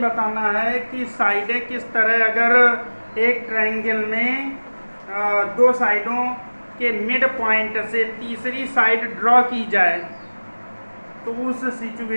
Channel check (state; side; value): inverted; both; correlation -1.00